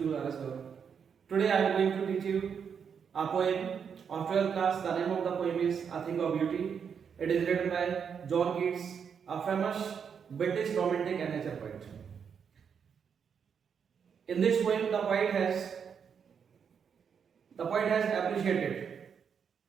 RS Gaur. Today I am going to teach you a poem of 12th class. The name of the poem is A Thing of Beauty. It is written by John Keats, a famous British romantic and nature poet. In this poem, the poet has appreciated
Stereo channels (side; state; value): left; quieter; 7.0 dB